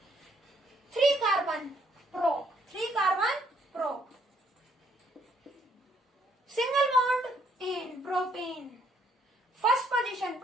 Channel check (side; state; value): both; normal; correlation 0.68